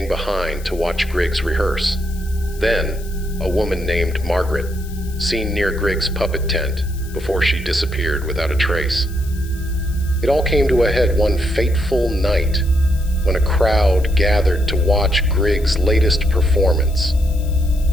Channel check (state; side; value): noise; left; hiss, 20 dB below the sound